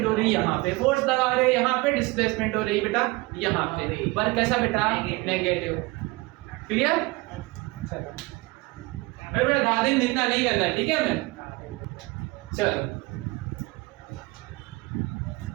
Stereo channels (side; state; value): left; quieter; 23.3 dB